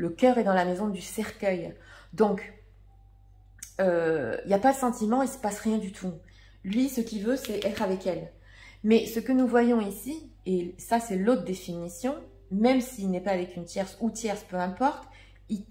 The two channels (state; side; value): identical; both; correlation 1.00